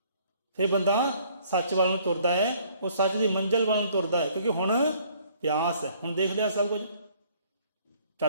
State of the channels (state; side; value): inverted; both; correlation -0.60